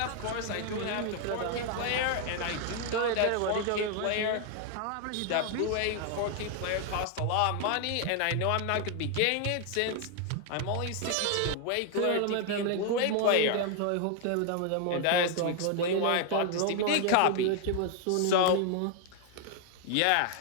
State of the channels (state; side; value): different; both; correlation 0.00